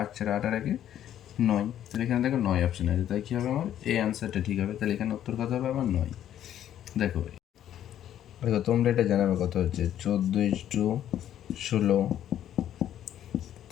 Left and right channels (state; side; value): quieter; right; 11.0 dB